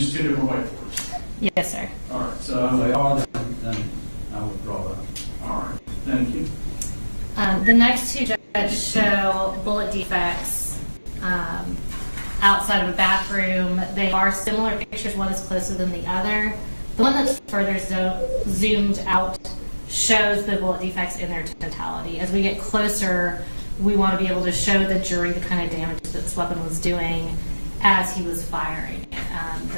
two different whiteboards. Yes, sir. All right, If so, they are, then I withdraw that. all right, thank you. The next two, Judge, show bullet defects outside of a bathroom. They are similar pictures. One is closer than the other. The one that's further zoomed out shows the bullet defects in their totality. As we get closer, we want to be able to show the jury the kind of damage that this weapon was doing as he was firing it.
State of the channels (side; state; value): both; inverted; correlation -1.00